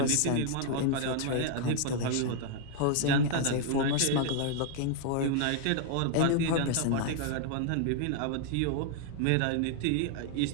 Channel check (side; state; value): both; different; correlation 0.00